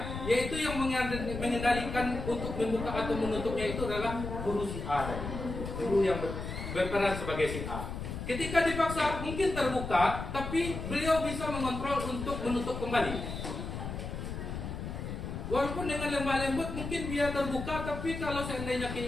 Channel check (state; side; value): noise; left; rumble, 6 dB below the sound